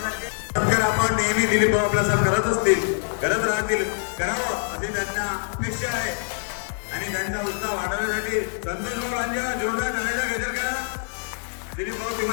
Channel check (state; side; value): silent; right; digital silence